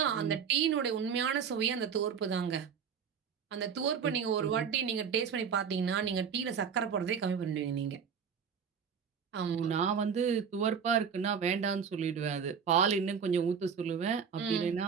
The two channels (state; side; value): quieter; left; 6.9 dB